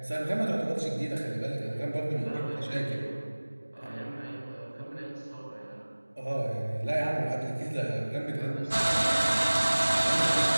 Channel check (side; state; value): both; inverted; correlation -1.00